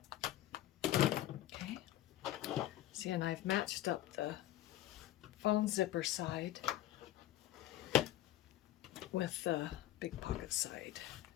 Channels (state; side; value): quieter; right; 14.2 dB